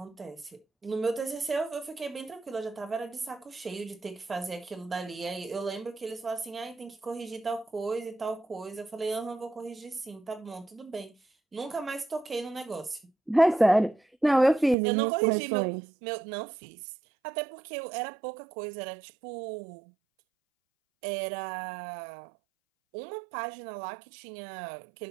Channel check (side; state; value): left; drops out; at 14.8 s